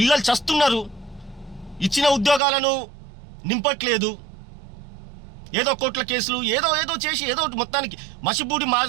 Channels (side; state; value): left; drops out; at 2.4 s